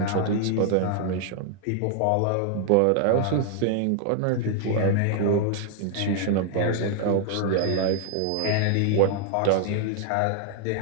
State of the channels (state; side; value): different; both; correlation 0.00